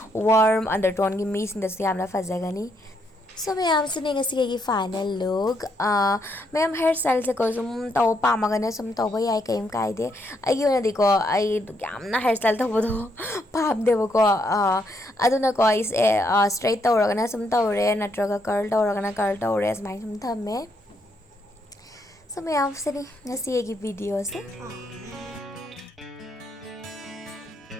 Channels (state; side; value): normal; both; correlation 0.75